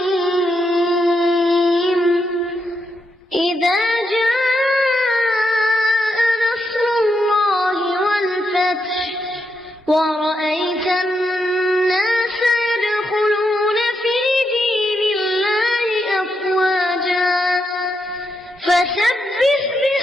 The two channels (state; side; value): normal; both; correlation 0.82